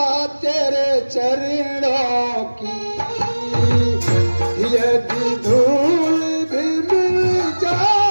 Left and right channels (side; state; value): both; inverted; correlation -1.00